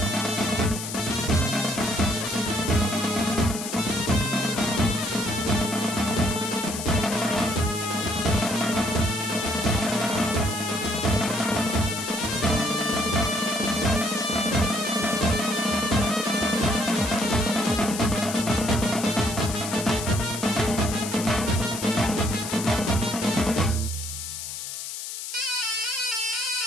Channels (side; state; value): left; noise; hiss, 7 dB below the sound